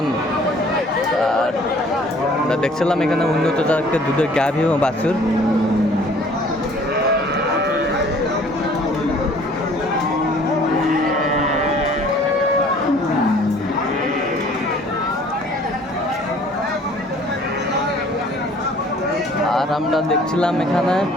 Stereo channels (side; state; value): both; normal; correlation 0.54